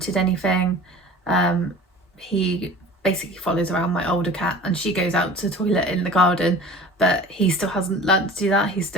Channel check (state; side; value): normal; both; correlation 0.41